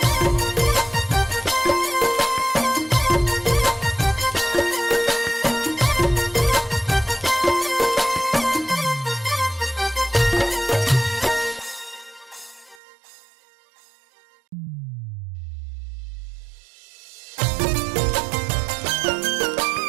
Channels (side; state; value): left; drops out; at 12.8 s